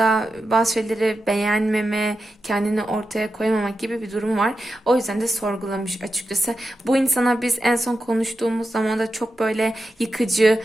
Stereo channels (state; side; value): normal; both; correlation 0.90